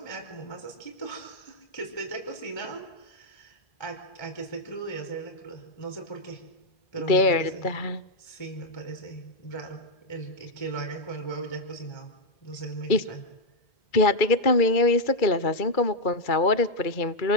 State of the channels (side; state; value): right; late; 2.3 ms